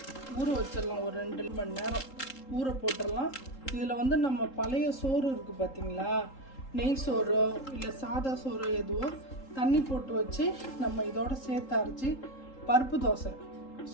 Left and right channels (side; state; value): right; late; 3.8 ms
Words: ஊற வச்சிடலாம். ஒரு 2 மணி நேரம் ஊற போட்டுடலாம். இதில் நம்ம பழைய சோறு இருக்குது பார்த்தீங்களா, நெய் சோறோ இல்லை சாதா சோறோ எதுவோ தண்ணி போட்டு வச்சு நம்ம இதோட சேர்த்து அரைச்சி பருப்பு தோசை